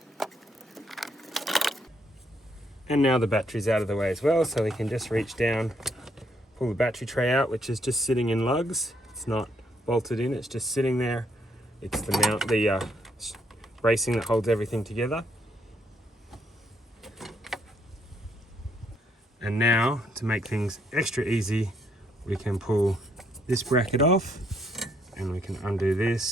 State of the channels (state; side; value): normal; both; correlation 0.72